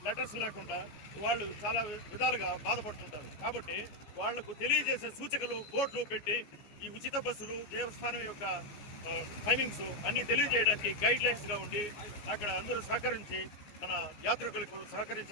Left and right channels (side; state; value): right; late; 14 ms